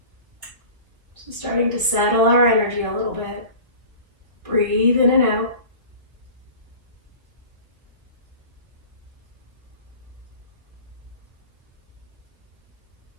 So starting to settle our energy a little bit. Breathe in and out.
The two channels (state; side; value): late; left; 1.2 ms